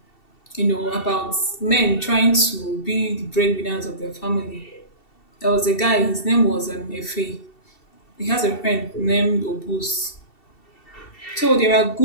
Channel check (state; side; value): late; right; 2.7 ms